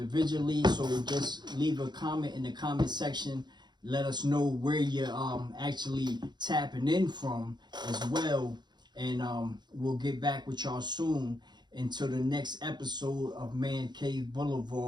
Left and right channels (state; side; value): late; left; 0.21 ms